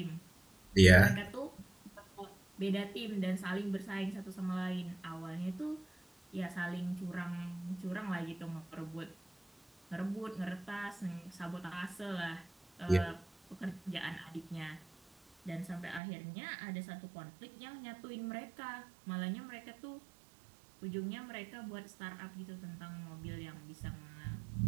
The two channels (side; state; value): left; drops out; at 16.0 s